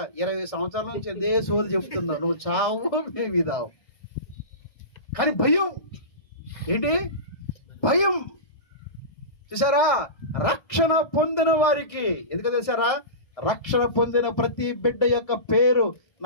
20 సంవత్సరాల నుంచి అదే సోది చెప్తున్నావు, నువ్వు చావు మేము ఇదావు. కానీ భయం ఏంటి? భయం. చూసారా, రక్షణ పొందిన వారికి ఎందుకు తెలుసారా? రక్షణ పొందిన ప్రతి బిడ్డ యొక్క పేరు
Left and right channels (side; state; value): right; late; 1.6 ms